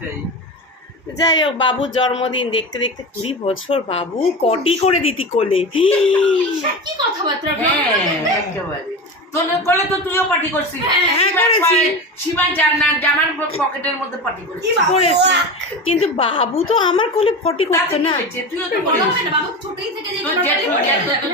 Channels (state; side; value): normal; both; correlation 0.25